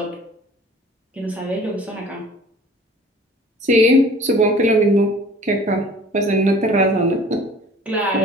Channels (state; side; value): normal; both; correlation 0.48